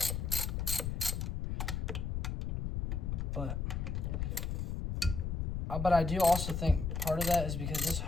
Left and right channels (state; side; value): noise; left; rumble, 1 dB below the sound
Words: But I do also think part of that is because this